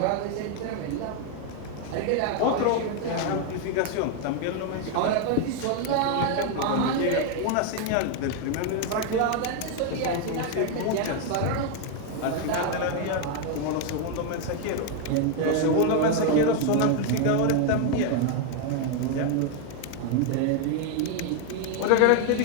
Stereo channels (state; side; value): different; both; correlation 0.01